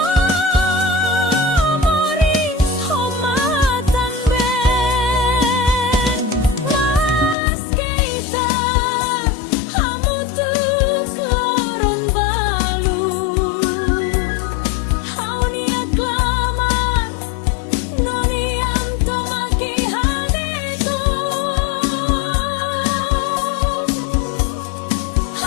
moris homatan ben Mas keita hamutu kloron balu Haunia klamar noniam tomaki hadeto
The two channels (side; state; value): right; drops out; at 7.4 s